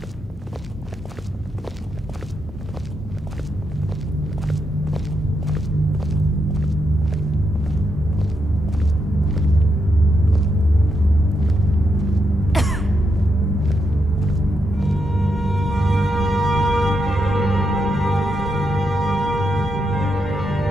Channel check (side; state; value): both; normal; correlation 0.82